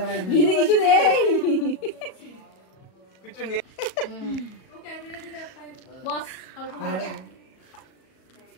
দিদি কিছু নেই, কিছু নেই। ওকে বিলে দিতে বস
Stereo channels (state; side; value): late; right; 37 ms